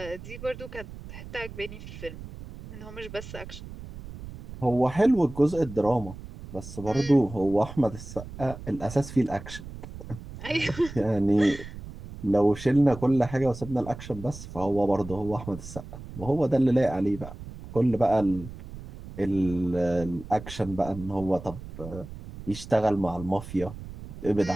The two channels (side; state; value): right; noise; rumble, 13 dB below the sound